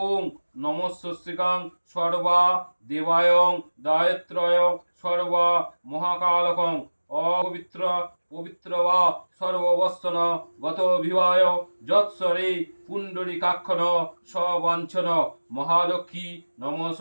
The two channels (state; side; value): inverted; both; correlation -1.00